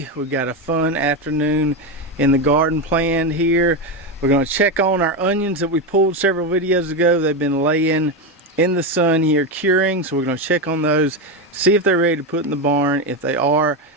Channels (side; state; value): both; normal; correlation 0.12